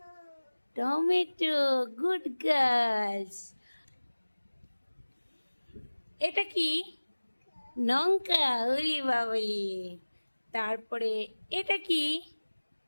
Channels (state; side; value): inverted; both; correlation -1.00